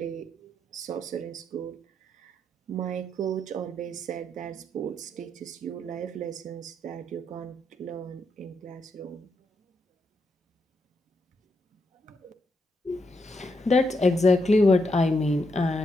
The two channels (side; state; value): both; normal; correlation 0.80